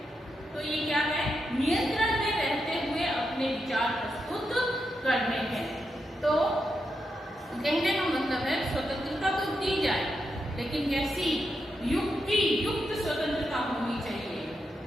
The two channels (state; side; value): normal; both; correlation 0.85